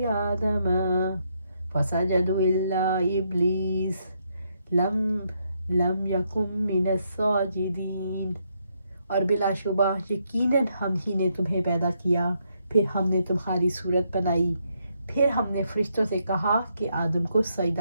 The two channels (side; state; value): both; inverted; correlation -0.77